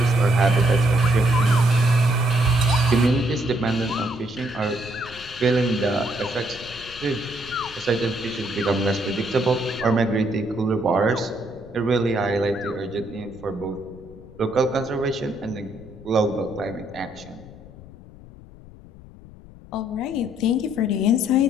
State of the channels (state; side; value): noise; left; rumble, 19 dB below the sound